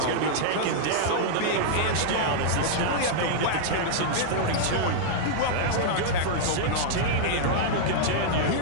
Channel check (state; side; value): different; both; correlation -0.01